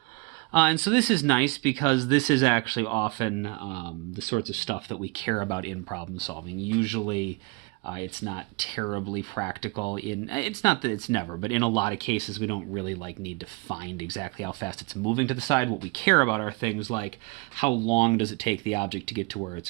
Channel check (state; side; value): quieter; left; 27.8 dB